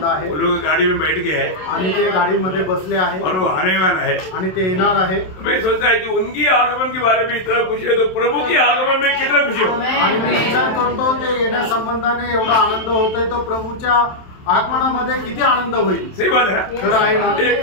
आहे। वो लोग गाड़ी में बैठ गए हैं आणि ते गाडीमध्ये बसले आहे और वो आने वाला है आणि ते येणार आहे। मैं सोचता है कि उनकी आगमन के बारे में इतना खुशी है तो प्रभु की आगमन में कितना खुशी हो। आणि मी विचार करतो ते येण्यासंबंधाने एवढा आनंद होतोय तो प्रभूच्या आगमनामध्ये किती आनंद होईल। सही बात है ना? खरं आहे ना?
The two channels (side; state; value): right; late; 27 ms